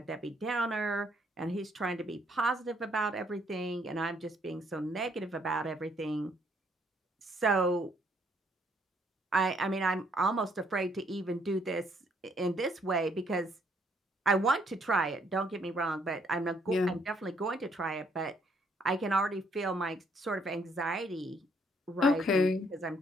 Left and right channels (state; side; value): normal; both; correlation 0.68